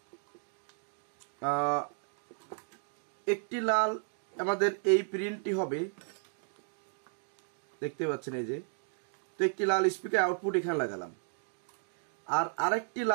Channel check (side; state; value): left; silent; 55 dB below the other